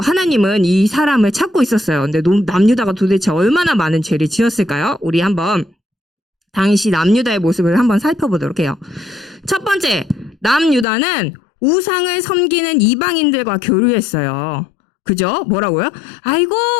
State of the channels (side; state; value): right; drops out; at 10.9 s